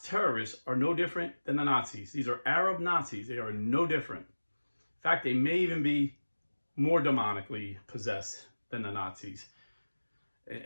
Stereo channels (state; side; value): inverted; both; correlation -1.00